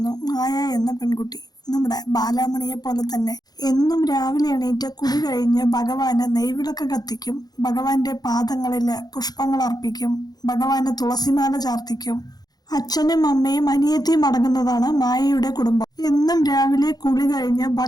മായ എന്ന പെൺകുട്ടി. നമ്മുടെ ബാലാമണിയെ പോലെ തന്നെ എന്നും രാവിലെ എണീറ്റ് കുടി കഴിഞ്ഞ് ഭഗവാന് നെയ്വിളക്ക് കത്തിക്കും, ഭഗവാന്റെ പാദങ്ങളില് പുഷ്പങ്ങൾ അർപ്പിക്കും, ഭഗവാന് തുളസിമാല ചാർത്തിക്കും. അച്ഛനും അമ്മയും അനിയത്തിയും അടങ്ങുന്നതാണ് മായയുടെ കുടുംബം. എന്നും രാവിലെ കുളി കഴിഞ്ഞ്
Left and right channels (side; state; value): right; late; 0.19 ms